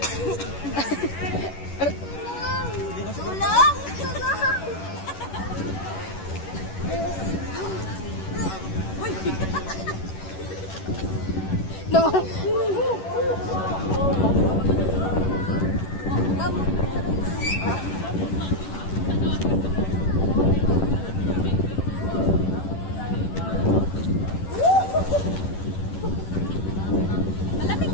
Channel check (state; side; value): late; right; 11 ms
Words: Tulong! No. Malamig